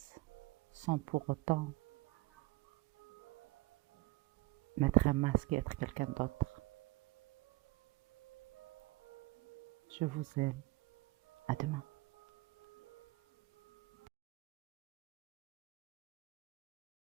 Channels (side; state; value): left; quieter; 21.3 dB